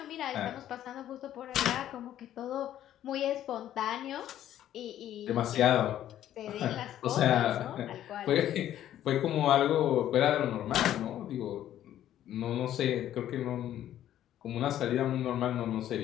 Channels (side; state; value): right; quieter; 11.9 dB